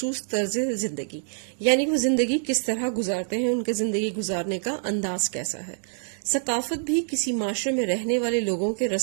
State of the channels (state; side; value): silent; left; digital silence